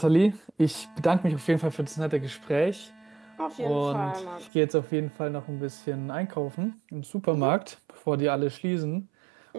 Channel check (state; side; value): drops out; left; at 4.5 s